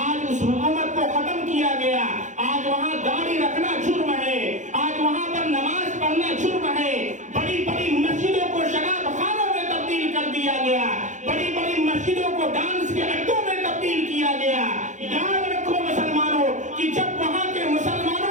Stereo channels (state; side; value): late; left; 0.35 ms